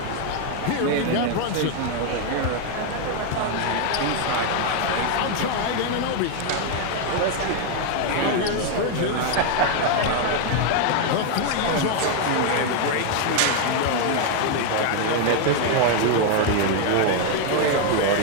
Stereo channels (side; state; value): both; different; correlation 0.01